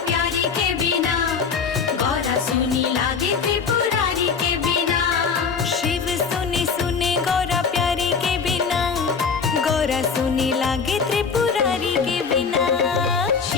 सुनी लागे त्रिपुरारी के बिना।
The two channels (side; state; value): right; quieter; 5.7 dB